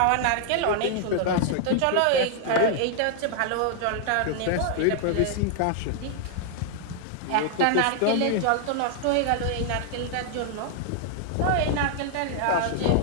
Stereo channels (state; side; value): different; both; correlation 0.00